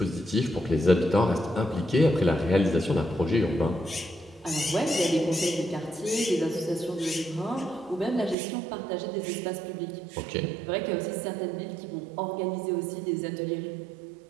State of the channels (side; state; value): left; drops out; at 8.3 s